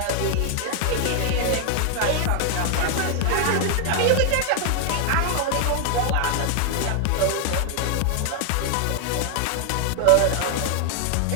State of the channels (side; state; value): both; different; correlation 0.00